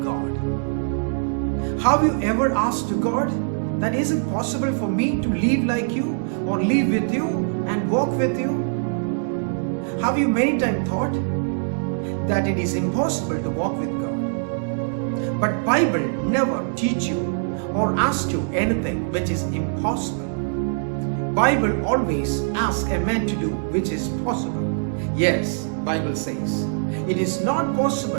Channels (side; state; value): left; silent; digital silence